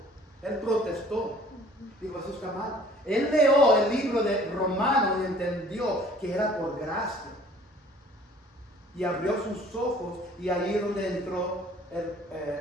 Él protestó, dijo: eso está mal. Él leyó el libro de Romanos y entendió que era por gracia. Y abrió sus ojos y ahí es donde entró,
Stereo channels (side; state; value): both; normal; correlation 0.53